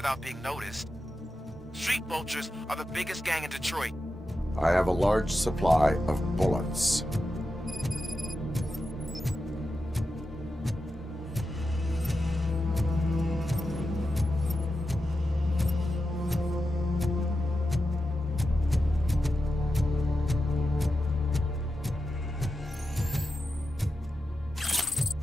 being noticed. Street vultures are the biggest gang in Detroit. I have a large supply of bullets.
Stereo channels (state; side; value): normal; both; correlation 0.90